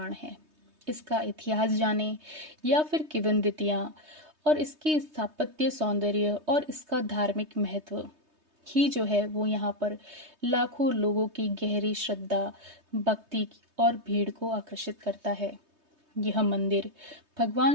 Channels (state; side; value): late; left; 3.2 ms